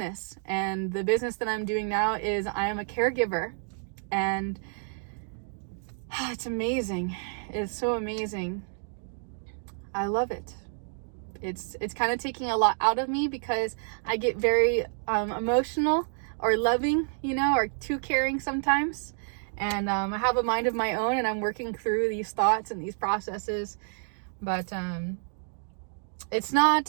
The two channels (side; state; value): left; silent; 56 dB below the other